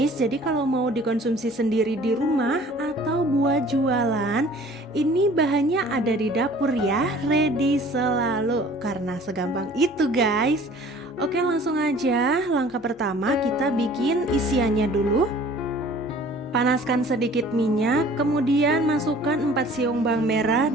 Jadi kalau mau dikonsumsi sendiri di rumah atau buat jualan, ini bahannya ada di dapur ya, ready selalu. Karena segampang itu guys. Oke, langsung aja. Langkah pertama kita bikin isiannya dulu. Panaskan sedikit minyak, kemudian masukkan 4 siung bawang merah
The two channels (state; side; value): normal; both; correlation 0.50